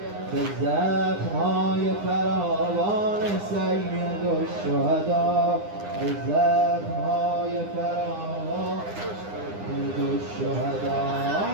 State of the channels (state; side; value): late; left; 9.8 ms